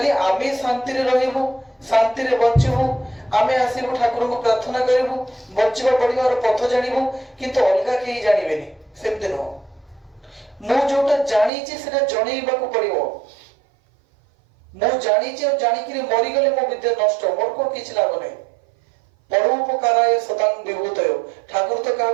আমি শান্তিরে রহিবু, শান্তিরে বঞ্চিবু, আমি আসিবু ঠাকুরଙ୍କୁ প্রার্থনা করিবু, বঞ্চিবা পড়িবার পথ জানিবু, কিন্তু অলগা কেହି জানিবেনি, সেমতি নহ। ମୁଁ ଯୋଉଟା ଜାଣିଛି ସେଟା ଜଣେଇବାକୁ ପଡିବ। ମୁଁ ଜାଣିଛି ଆଉ ଜାଣିକିରି ମରିଗଲେ ମୋ ବିଦ୍ୟା ନଷ୍ଟ, ମୋର କଣ କିଛି ଲାଭ ନାହିଁ। ପରୋପକାରାୟ ସତାଂ ବିଭୂତୟ, ଠାକୁର ତ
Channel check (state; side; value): drops out; left; at 11.5 s